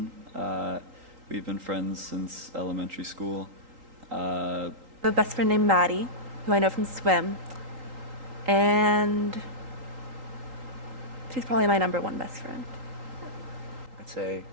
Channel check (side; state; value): left; late; 3.8 ms